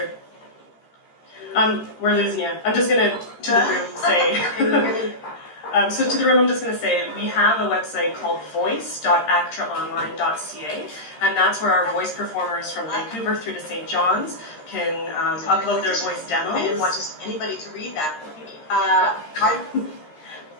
we're losing you. I'm just gonna, to the room, say, so to the room, I'm just going to say, we have a website called voice.actraonline.ca, and that's where our voice performers from Vancouver through to St. John's can upload their voice demos. I didn't want just anybody to read that.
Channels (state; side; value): late; right; 13 ms